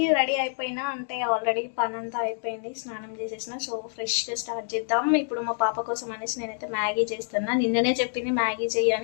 రెడీ అయిపోయినా, అంటే ఆల్రెడీ పని అంతా అయిపోయింది, స్నానం చేసేసిన. సో ఫ్రెష్గా స్టార్ట్ చేద్దాం. ఇప్పుడు మా పాప కోసం అనేసి నేనైతే మ్యాగీ చేస్తున్నా. నిన్ననే చెప్పింది మ్యాగీ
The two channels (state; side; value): silent; right; digital silence